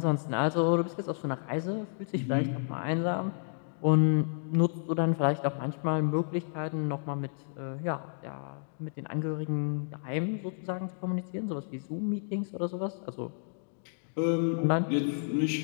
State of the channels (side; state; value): right; silent; digital silence